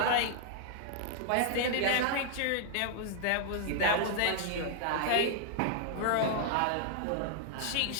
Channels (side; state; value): both; different; correlation -0.01